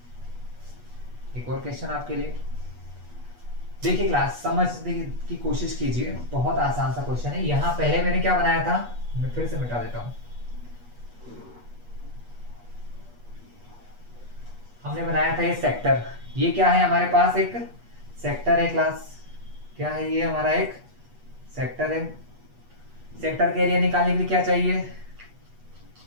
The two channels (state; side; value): late; left; 8.3 ms